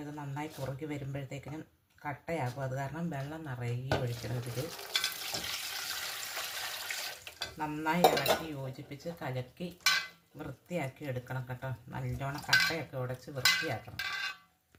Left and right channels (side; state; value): both; identical; correlation 1.00